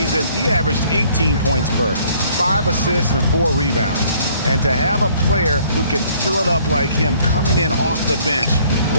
he averaged 18 points per, 5 assists and 4 rebounds. And to have a player who can fill it up like him coming in off the bench,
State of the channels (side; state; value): both; inverted; correlation -0.60